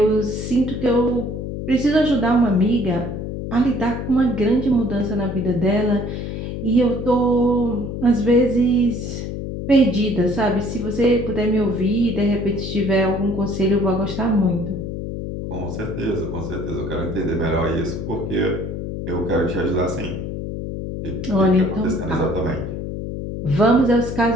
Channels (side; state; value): left; noise; hum, 6 dB below the sound